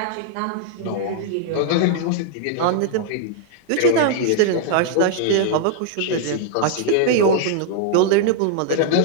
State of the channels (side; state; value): both; different; correlation 0.00